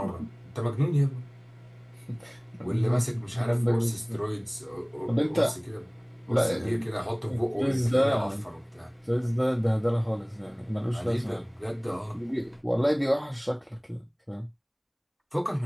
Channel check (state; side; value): identical; both; correlation 1.00